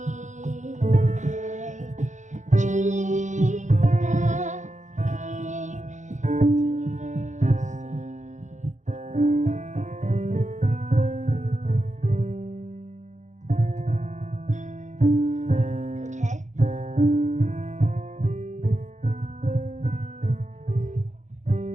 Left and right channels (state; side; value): late; left; 0.35 ms